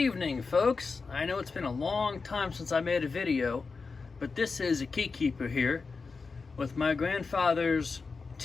folks. I know it's been a long time since I made a video, but this is a KeyKeeper here with my grandfather's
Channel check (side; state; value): right; quieter; 4.5 dB